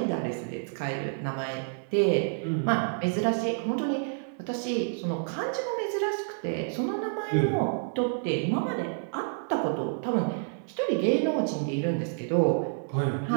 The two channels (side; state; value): left; silent; digital silence